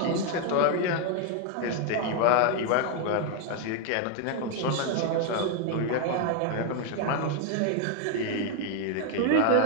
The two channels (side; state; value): both; different; correlation 0.01